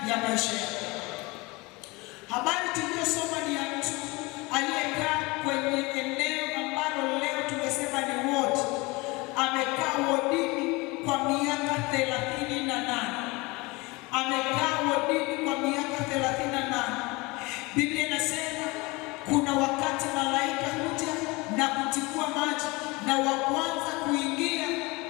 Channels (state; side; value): quieter; right; 24.5 dB